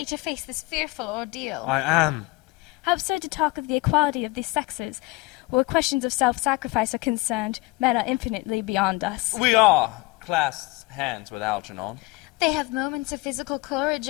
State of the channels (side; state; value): right; quieter; 22.7 dB